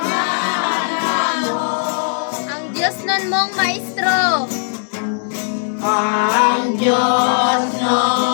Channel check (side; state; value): right; silent; digital silence